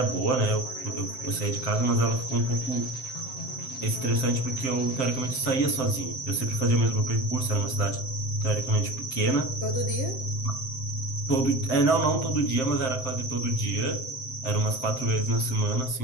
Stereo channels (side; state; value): right; late; 7.7 ms